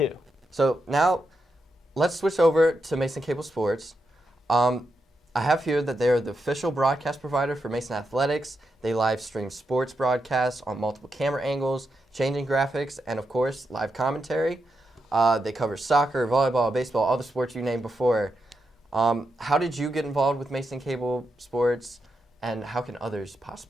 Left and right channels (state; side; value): normal; both; correlation 0.85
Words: So now let's switch over to Mason Cable Sports. I have here that they are the official broadcast provider for Mason Athletics. They live stream sports broadcasts on multiple camera angles, changing graphics, and of course, live commentary. They cover soccer, volleyball, baseball, all the sports you named before. How did you get involved with Mason Cable Sports, and how can others